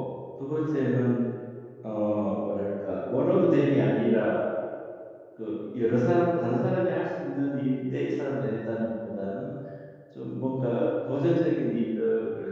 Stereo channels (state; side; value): identical; both; correlation 1.00